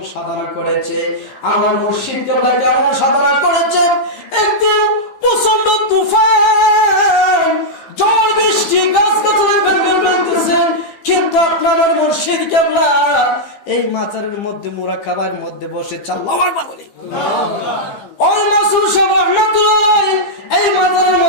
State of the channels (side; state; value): right; late; 15 ms